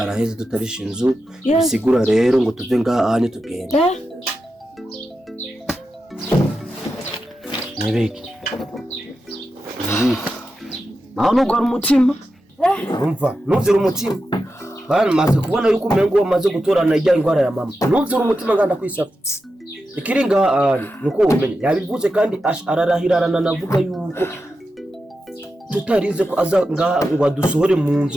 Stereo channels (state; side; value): normal; both; correlation 0.90